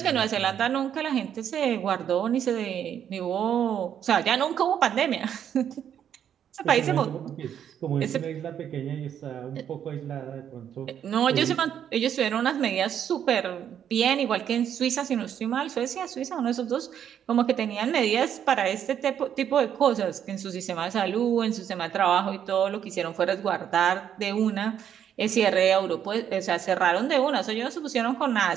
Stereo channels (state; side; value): quieter; left; 9.2 dB